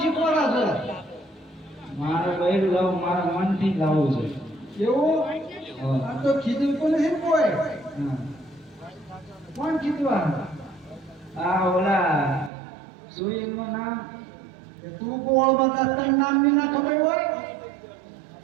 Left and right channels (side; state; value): left; drops out; at 12.5 s